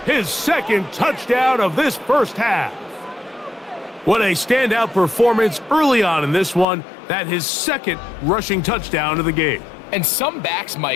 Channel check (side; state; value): right; drops out; at 6.7 s